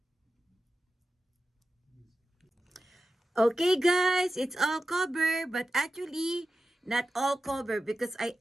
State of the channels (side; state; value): both; normal; correlation 0.92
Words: Okay, guys, it's all covered, but actually not all covered because I